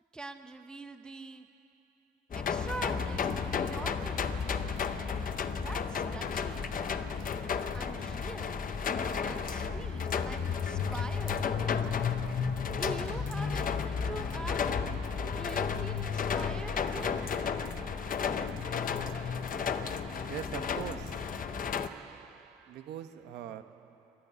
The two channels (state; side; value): quieter; right; 5.1 dB